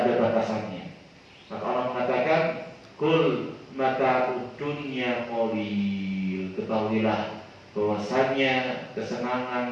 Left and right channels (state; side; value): identical; both; correlation 1.00